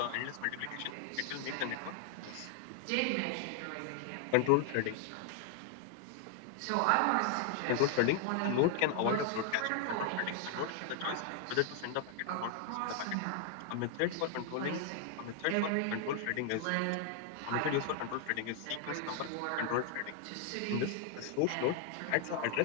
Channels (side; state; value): both; different; correlation 0.00